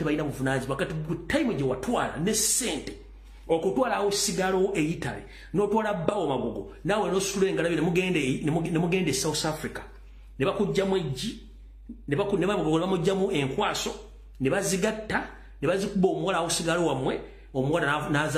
balina buvunaanyizibwa kati time gye watwala ne ssente. Okutwala awo sigalo eyitale n'otwala bawo magogo nawe n'osula engalabi ne mugende South Africa ne bakujjamu ejji ne bamugjamu enkwaso ne bazigatta ne bazikuba omuwala awo sigalo wamwe omuwala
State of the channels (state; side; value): identical; both; correlation 1.00